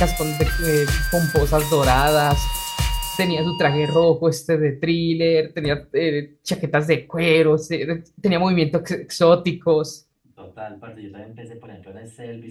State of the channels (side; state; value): both; identical; correlation 1.00